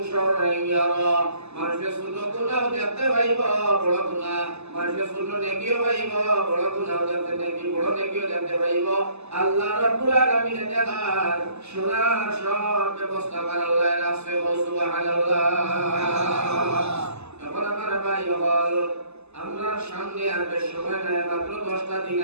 শাররান ইয়ারা মানুষের ছোট গুনাহ দেখতে পাইবো বড় গুনাহ মানুষের ছোট নেকিও পাইবো বড় গুনাহ দেখতে নেকি বড় নেকিও দেখতে পাইবো আল্লাহ রাব্বুল আলামিন দেখার শোনার সব ব্যবস্থা করে আল্লাহ রাসে সুবহানাল্লাহ। এখন আমার ভাই হল আমরা সামনে আর বেশ সময় নাই মাত্র 10টা দিন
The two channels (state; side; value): late; left; 0.80 ms